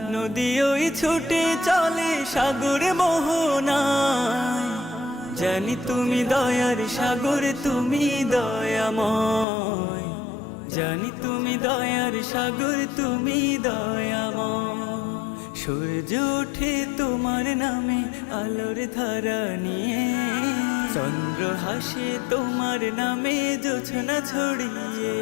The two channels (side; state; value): right; drops out; at 9.5 s